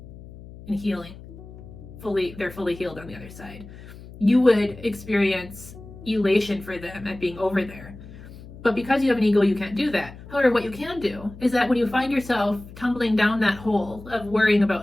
and healing. They're fully healed on the other side. You would experience elation for them at being over there. But because you have an ego, you can't do that. However, what you can do is that when you find yourself tumbling down that hole of worrying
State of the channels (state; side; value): noise; left; hum, 17 dB below the sound